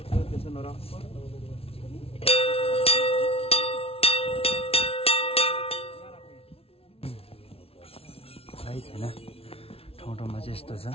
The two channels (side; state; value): right; late; 0.28 ms